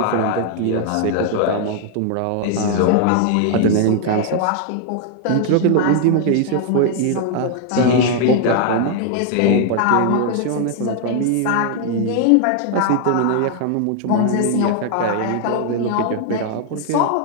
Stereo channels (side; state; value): both; different; correlation 0.00